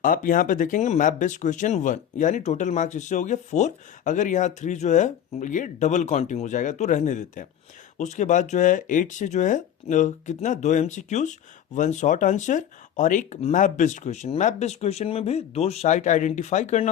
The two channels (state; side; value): quieter; right; 9.9 dB